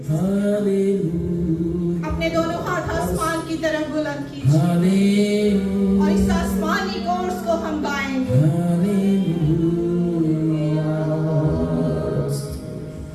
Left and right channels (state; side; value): identical; both; correlation 1.00